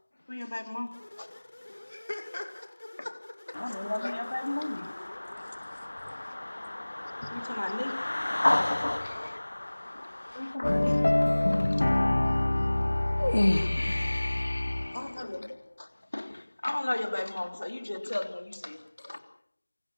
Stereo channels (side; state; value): both; inverted; correlation -1.00